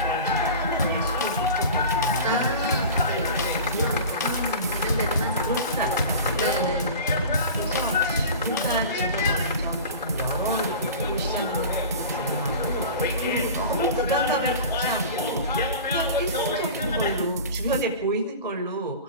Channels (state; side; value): inverted; both; correlation -0.35